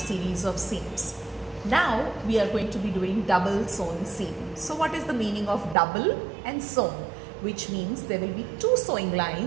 of seams. Now we are going to be doing double sewn seam. So what is the meaning of double and sewn? Which means there will be two sewing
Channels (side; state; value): left; drops out; at 5.8 s